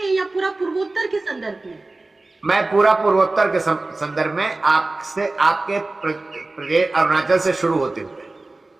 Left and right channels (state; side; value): quieter; left; 3.1 dB